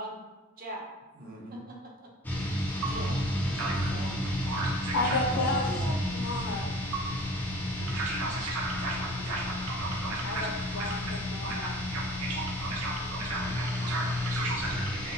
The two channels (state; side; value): normal; both; correlation 0.45